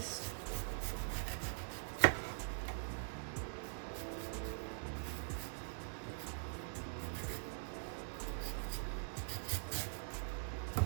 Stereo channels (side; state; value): left; silent; digital silence